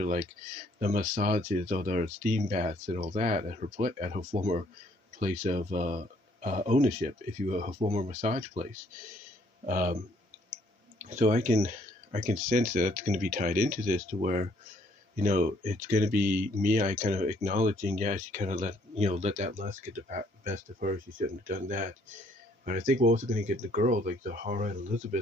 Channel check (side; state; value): both; normal; correlation 0.64